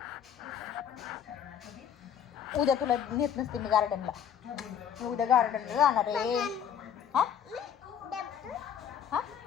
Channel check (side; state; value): right; quieter; 8.7 dB